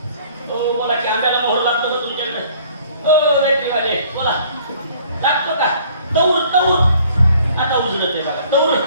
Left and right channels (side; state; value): both; inverted; correlation -0.57